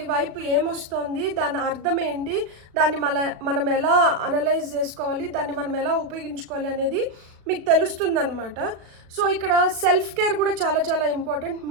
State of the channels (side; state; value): left; late; 36 ms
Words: వైపు ఏమొస్తుంది, దాని అర్థం ఏంటి, దాన్ని మనం ఎలా అనలైజ్ చేసుకోవాలి, దాన్ని మనం ఎలా ఉపయోగించుకోవాలి అనేది మీకు తెలుస్తుందన్నమాట. సో ఇక్కడ సెల్ఫ్ కేర్ కూడా చాలా చాలా ఇంపార్టెంట్.